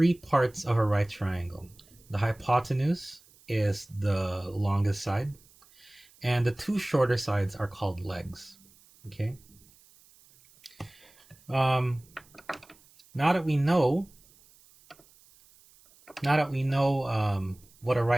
parts of a right triangle. The hypotenuse is the longest side, and the two shorter sides are called legs, okay? Now that we know what a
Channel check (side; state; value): right; noise; hiss, 28 dB below the sound